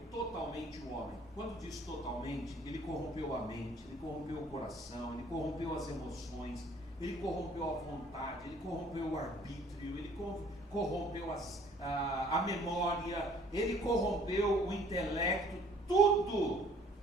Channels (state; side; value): normal; both; correlation 0.56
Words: totalmente o homem. Quando diz totalmente, ele corrompeu a mente, ele corrompeu o coração, ele corrompeu as emoções, ele corrompeu a vontade, ele corrompeu o arbítrio, ele corrompeu a memória, ele corrompeu o intelecto, tudo